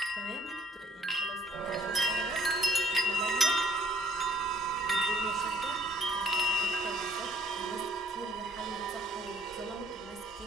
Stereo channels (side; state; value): both; normal; correlation 0.61